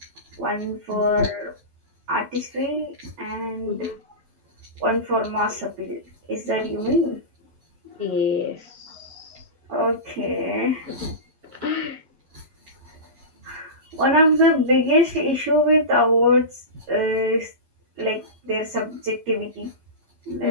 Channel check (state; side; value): late; left; 11 ms